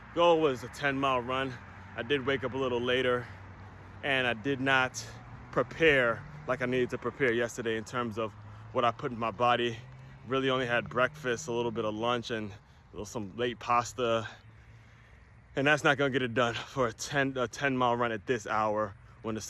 was a 10-mile run. I did wake up a little later, and I did not prepare like I needed to prepare yesterday in terms of what I put in my body. Really only had breakfast, a little bit of lunch, and some late pasta. And that's not gonna get it done for a 10-mile run at this hour when the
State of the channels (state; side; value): identical; both; correlation 1.00